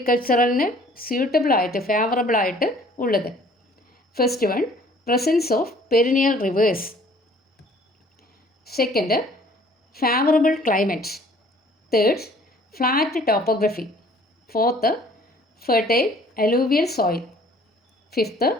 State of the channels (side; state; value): both; normal; correlation 0.55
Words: സ്യൂട്ടബിൾ ആയിട്ട് ഫേവറബിൾ ആയിട്ട് ഉള്ളത്. First one, presence of perennial rivers. Second, favourable climate. Third, flat topography. Fourth, fertile alluvial soil. Fifth,